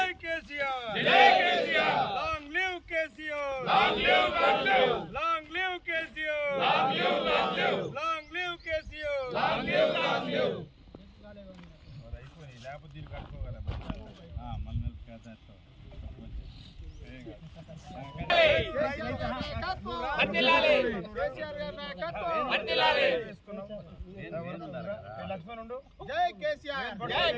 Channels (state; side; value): identical; both; correlation 1.00